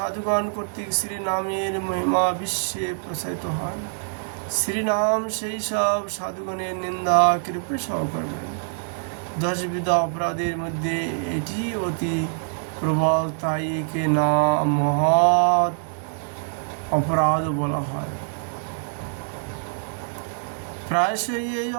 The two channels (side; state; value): left; silent; 62 dB below the other